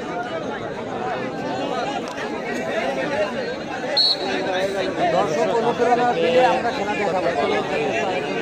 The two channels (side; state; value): both; identical; correlation 1.00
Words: দর্শক অনুপ্রেরণা দিলে আমরা খেলা দেখাবো। আসলে